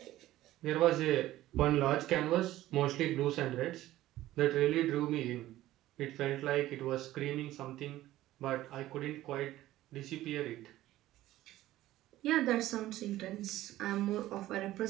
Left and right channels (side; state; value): left; quieter; 15.2 dB